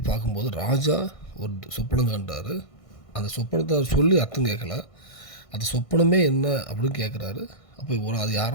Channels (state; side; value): late; right; 1.6 ms